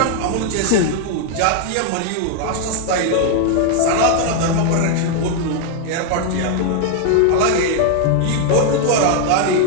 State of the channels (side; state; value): both; different; correlation 0.00